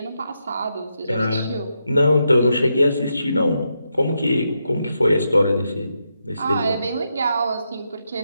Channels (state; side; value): inverted; both; correlation -0.83